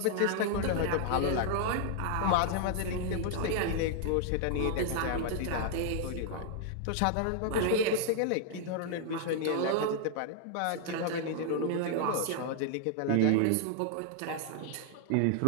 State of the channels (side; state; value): both; different; correlation 0.00